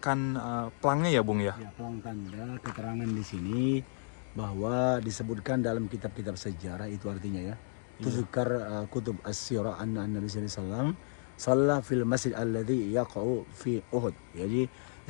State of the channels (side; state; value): right; silent; digital silence